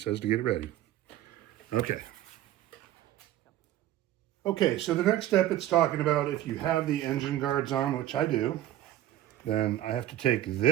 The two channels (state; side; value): quieter; left; 13.2 dB